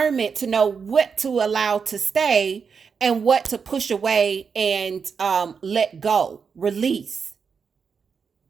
to know what to allow to stay and what to push away and let go, release.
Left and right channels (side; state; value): left; quieter; 6.0 dB